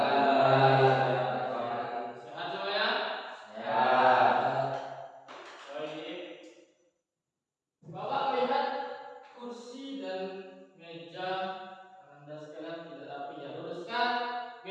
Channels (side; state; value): both; identical; correlation 1.00